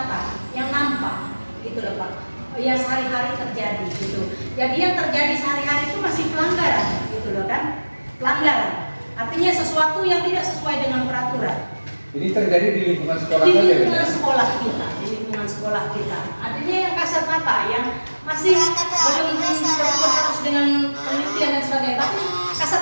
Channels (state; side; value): inverted; both; correlation -1.00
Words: yang nampak, gitu loh Pak. Yang sehari-hari terjadi, gitu. Jadi yang terjadi sehari-hari itu masih pelanggaran, gitu loh kan? Pelanggaran. Artinya sesuatu yang tidak sesuai dengan peraturan. Ini terjadi di lingkungan sekolah Di saja, lingkungan kan? sekolah kita, di lingkungan sekolah kita. Artinya yang kasat mata, yang masih belum harus dengan penelitian dan sebagainya, tapi